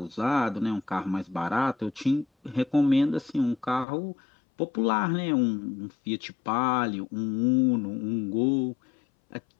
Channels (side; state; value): right; drops out; at 3.9 s